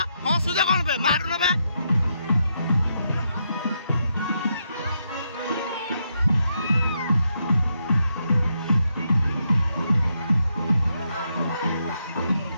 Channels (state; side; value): inverted; both; correlation -0.81